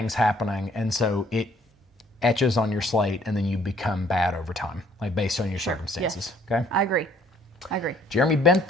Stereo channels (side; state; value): both; normal; correlation 0.62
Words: happening, and so it etches on your slate, and then you become bad over time, like based on your circumstances. Yes. Okay. I agree. Jeremy